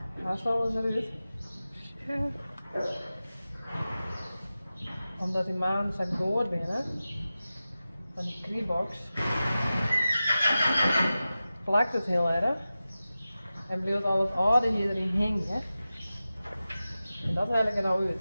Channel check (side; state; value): both; inverted; correlation -0.95